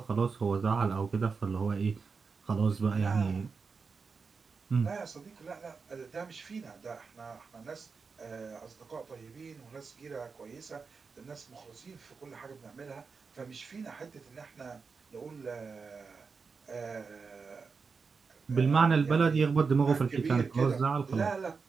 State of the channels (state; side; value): quieter; left; 5.0 dB